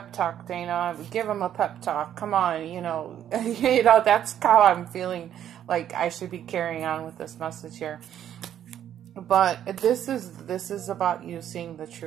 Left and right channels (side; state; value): left; quieter; 10.4 dB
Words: talk, Dana. Give him a pep talk. Come on, you know, that's how I'm feeling like I should be carrying on with this message here. But this is about you seeing the